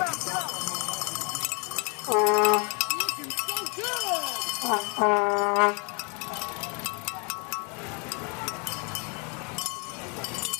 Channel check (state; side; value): quieter; right; 34.3 dB